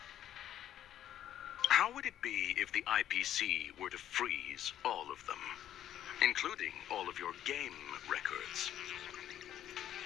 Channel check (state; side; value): quieter; right; 11.2 dB